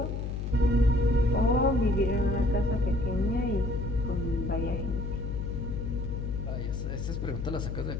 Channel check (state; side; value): noise; left; hum, 3 dB below the sound